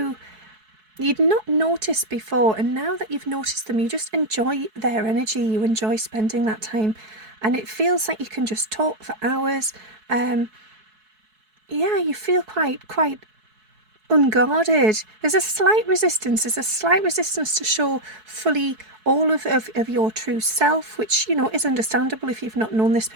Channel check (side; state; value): left; late; 4.6 ms